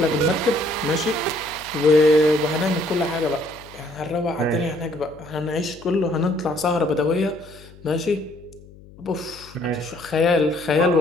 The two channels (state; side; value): noise; left; hum, 22 dB below the sound